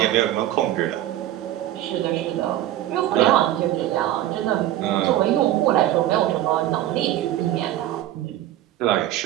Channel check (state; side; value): quieter; left; 13.5 dB